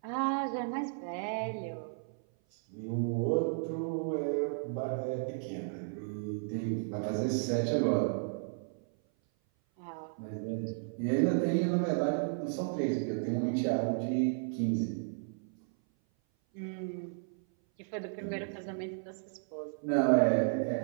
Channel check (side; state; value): left; silent; 55 dB below the other